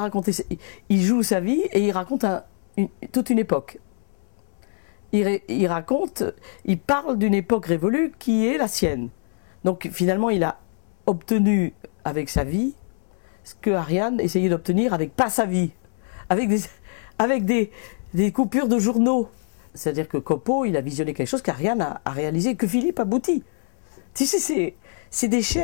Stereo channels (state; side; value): silent; right; digital silence